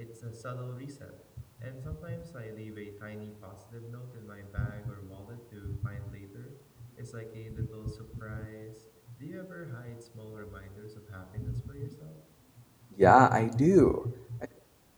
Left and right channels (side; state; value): both; identical; correlation 1.00